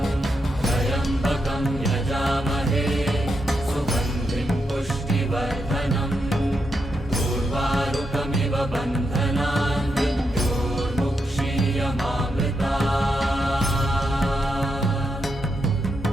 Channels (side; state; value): both; normal; correlation 0.83